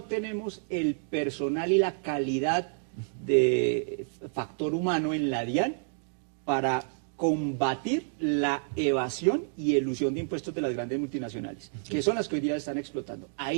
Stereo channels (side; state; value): left; silent; digital silence